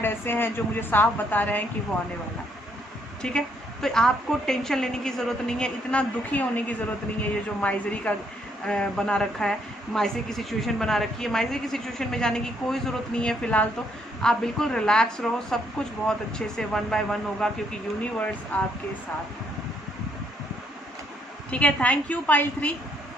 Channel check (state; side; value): normal; both; correlation 0.71